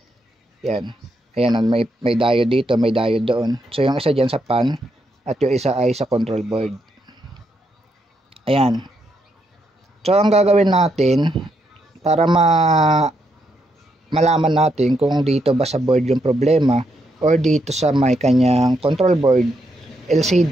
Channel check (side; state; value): both; normal; correlation 0.79